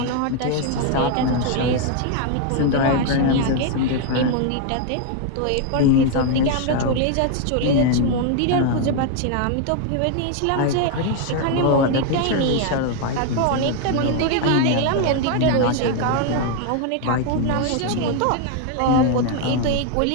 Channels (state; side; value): different; both; correlation 0.01